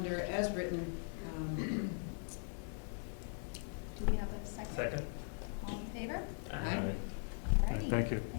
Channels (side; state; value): right; silent; 51 dB below the other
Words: as written. Do we have a second? Second. All in favor? Aye. Alrighty. Thank you.